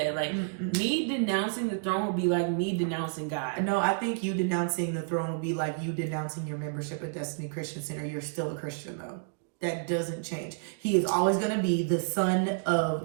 Like me denouncing the throne would be like me denouncing God. No, I think you denouncing the throne would be like you denouncing your membership at Destiny Christian Center. You're still a Christian though. That doesn't change. He is always going to be the son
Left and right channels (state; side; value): silent; left; 58 dB below the other